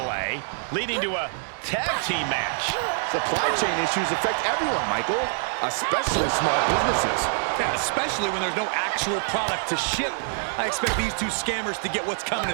leading to a tag team match. Supply chain issues affect everyone, Michael, especially small businesses. Yeah, especially when there's no actual product to ship. I expect these two scammers to get what's coming to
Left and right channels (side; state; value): left; silent; 61 dB below the other